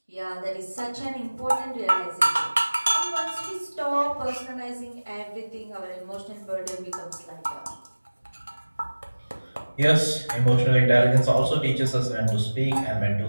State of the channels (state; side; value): inverted; both; correlation -1.00